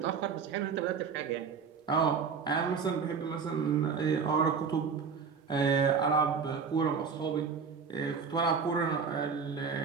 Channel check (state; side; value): quieter; left; 5.9 dB